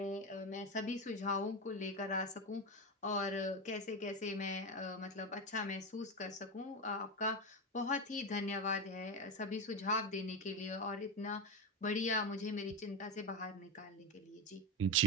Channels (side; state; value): both; normal; correlation 0.16